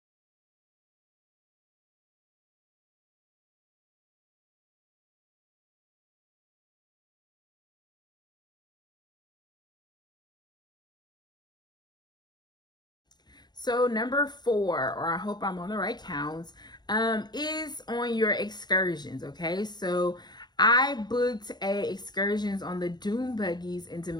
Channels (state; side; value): late; right; 0.21 ms